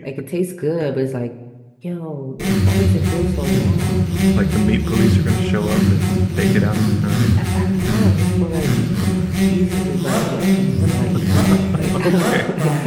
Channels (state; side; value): identical; both; correlation 1.00